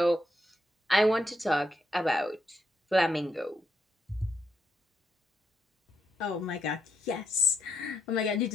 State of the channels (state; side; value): normal; both; correlation 0.79